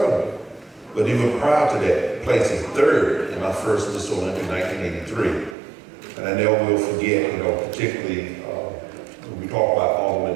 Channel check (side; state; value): left; drops out; at 5.6 s